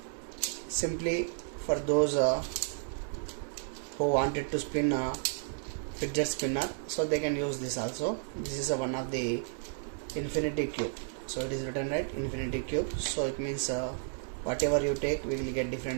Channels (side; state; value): left; silent; digital silence